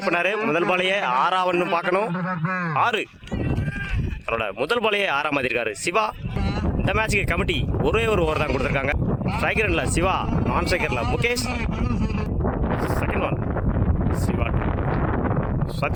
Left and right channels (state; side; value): identical; both; correlation 1.00